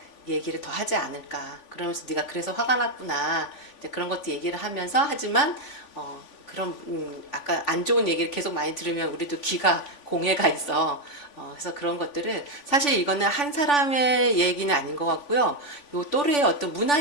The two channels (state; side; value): late; right; 3.5 ms